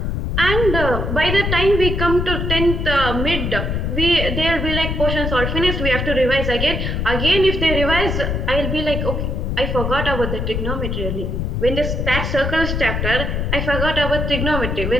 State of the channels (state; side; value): noise; left; rumble, 1 dB below the sound